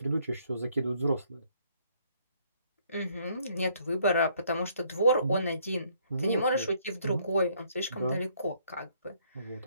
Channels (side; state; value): both; inverted; correlation -0.66